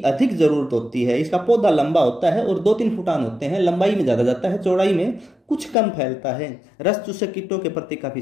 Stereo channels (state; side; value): drops out; right; at 5.8 s